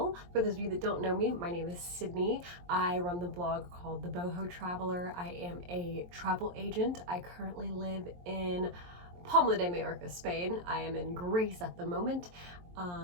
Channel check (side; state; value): left; late; 23 ms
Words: For those of you that don't know me, my name is Sydney. I run the blog called The Boho Traveler. I am a travel agent. I currently live in Palma de Mallorca, Spain. I am in Greece at the moment.